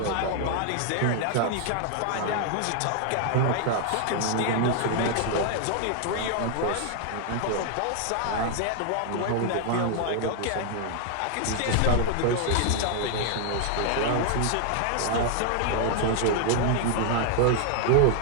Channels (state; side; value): different; both; correlation 0.00